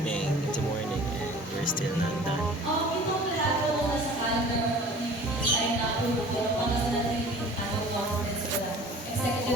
morning and we're still not done.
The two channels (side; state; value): both; normal; correlation 0.46